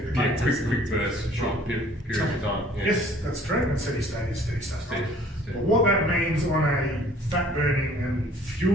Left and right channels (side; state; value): both; normal; correlation 0.54